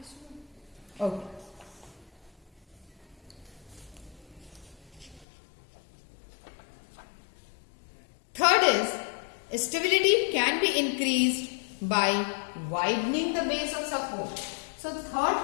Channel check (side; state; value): right; drops out; at 5.2 s